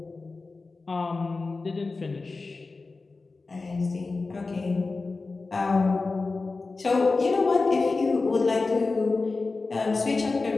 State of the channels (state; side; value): quieter; right; 3.8 dB